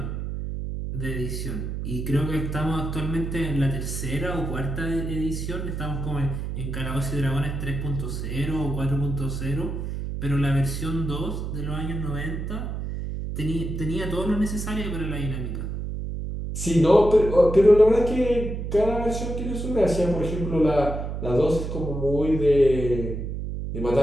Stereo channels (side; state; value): right; noise; hum, 4 dB below the sound